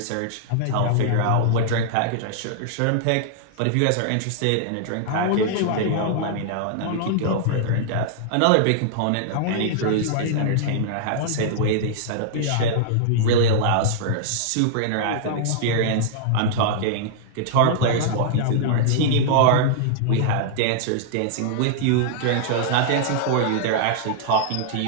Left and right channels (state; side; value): different; both; correlation -0.01